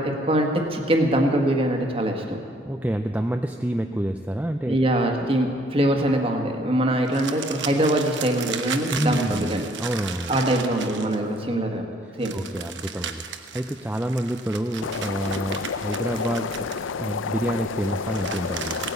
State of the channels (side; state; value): both; normal; correlation 0.61